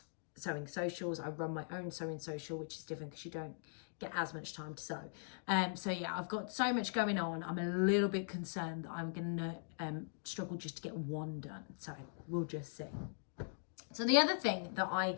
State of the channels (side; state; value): right; silent; digital silence